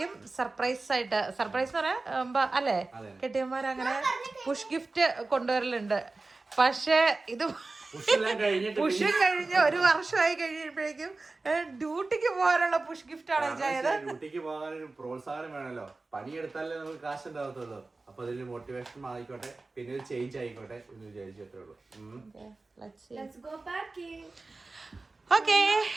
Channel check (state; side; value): quieter; left; 3.5 dB